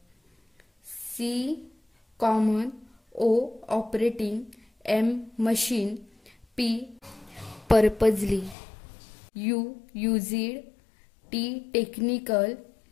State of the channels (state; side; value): drops out; right; at 8.6 s